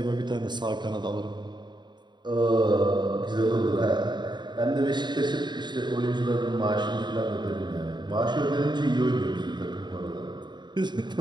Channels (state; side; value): late; left; 0.21 ms